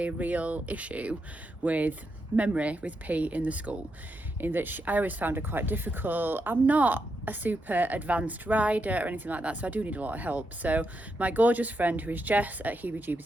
real issue with memory with P in the school, in that I always found her quite difficult. I'm not a super advanced rider or anything like that, so I do need a lot of help. So my gorgeous friend, who is Jess at Heebie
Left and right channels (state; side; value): normal; both; correlation 0.83